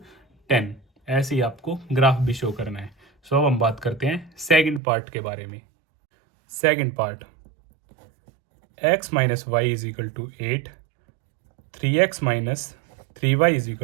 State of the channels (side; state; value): left; drops out; at 4.8 s